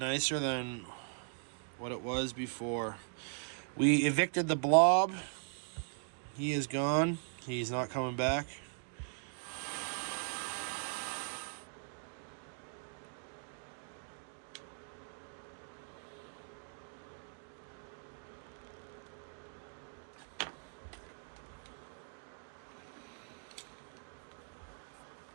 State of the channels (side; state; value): left; silent; 51 dB below the other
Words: than what it was before. We evicted the blob. He is gone. He's not coming back.